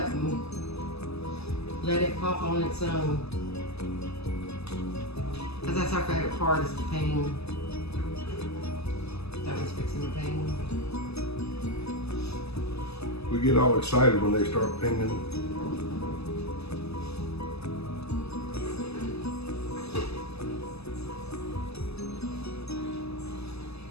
Let it pop on its own. Because that's our favorite part, is the ping. That was fixing the ping. We get all excited when they start pinging.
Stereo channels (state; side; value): late; right; 0.79 ms